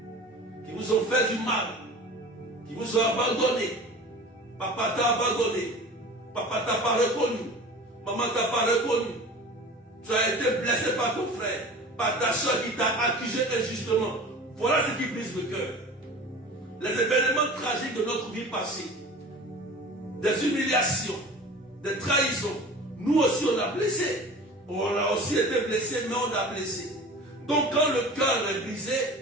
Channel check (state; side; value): normal; both; correlation 0.38